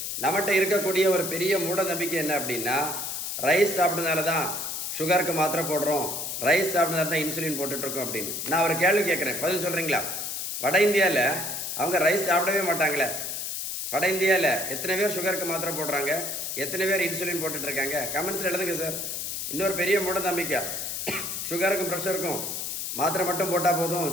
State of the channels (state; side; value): noise; left; hiss, 4 dB below the sound